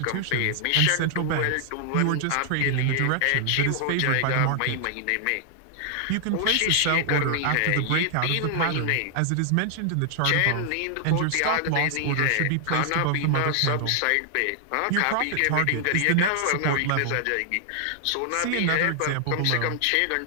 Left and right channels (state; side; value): different; both; correlation 0.00